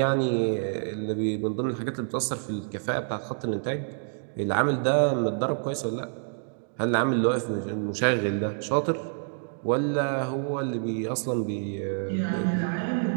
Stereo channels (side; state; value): left; silent; digital silence